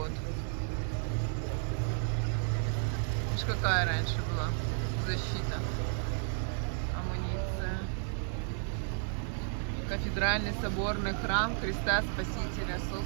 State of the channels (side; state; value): left; silent; 56 dB below the other